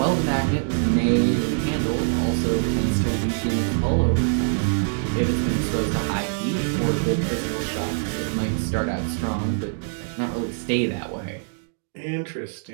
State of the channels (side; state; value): left; silent; digital silence